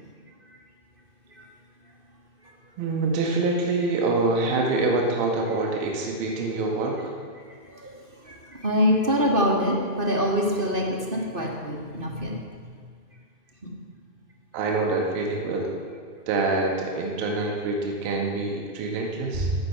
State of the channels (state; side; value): late; left; 2.6 ms